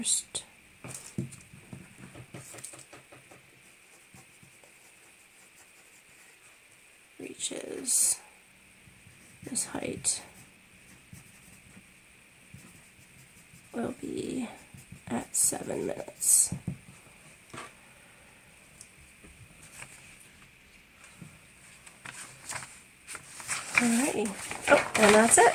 reaches this height will be at 7 minutes. Alrighty. Oh, and that's it.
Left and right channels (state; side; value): identical; both; correlation 1.00